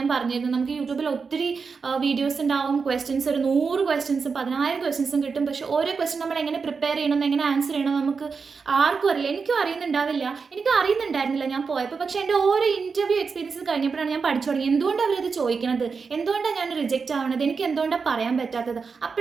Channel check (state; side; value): quieter; left; 5.2 dB